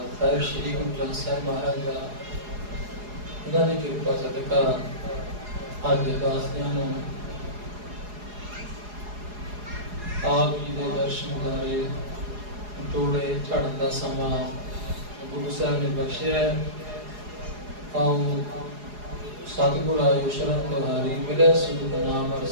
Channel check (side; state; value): left; late; 4.8 ms